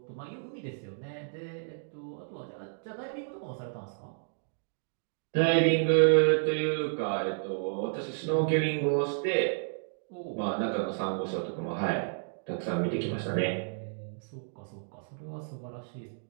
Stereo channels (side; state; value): left; silent; digital silence